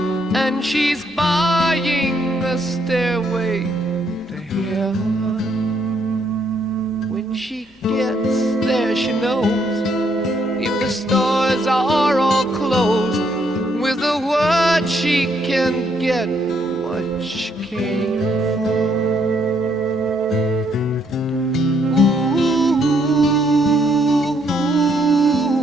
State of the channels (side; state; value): both; normal; correlation 0.71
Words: and she's buying a stairway to heaven. When she gets there, she knows if the stores are all closed, with a word she can get what she came for. Ooh,